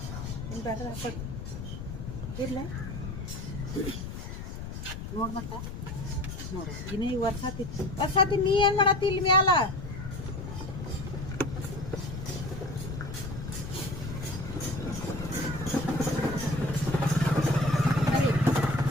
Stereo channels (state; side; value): noise; left; rumble, 7 dB below the sound